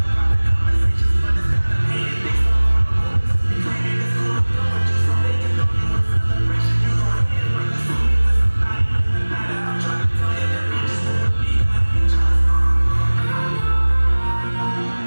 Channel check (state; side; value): inverted; both; correlation -1.00